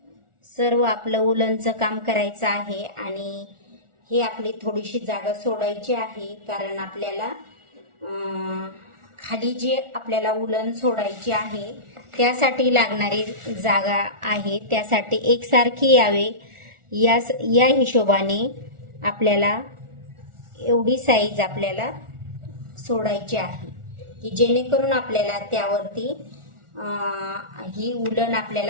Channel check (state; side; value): late; left; 1.4 ms